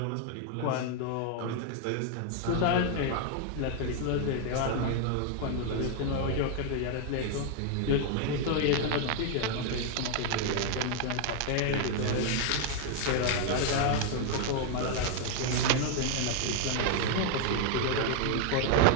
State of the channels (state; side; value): different; both; correlation 0.00